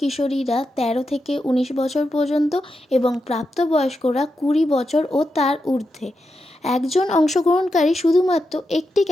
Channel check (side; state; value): both; normal; correlation 0.87